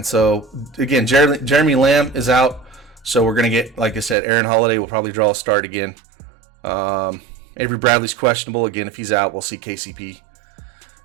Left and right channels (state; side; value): drops out; left; at 4.2 s